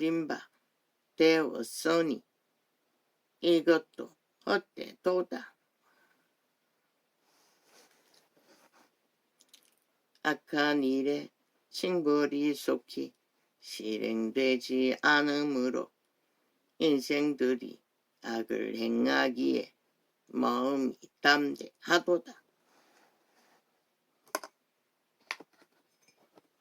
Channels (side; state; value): both; identical; correlation 1.00